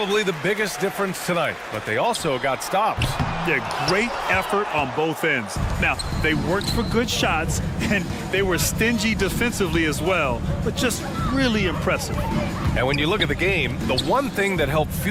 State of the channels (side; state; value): both; identical; correlation 1.00